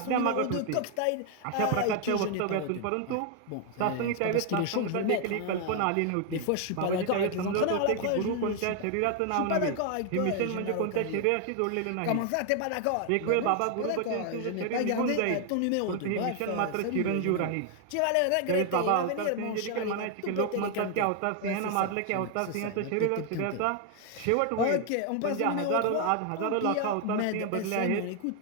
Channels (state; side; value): different; both; correlation 0.00